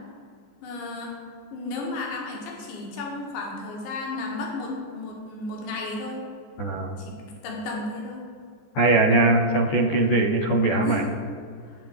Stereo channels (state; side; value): late; right; 15 ms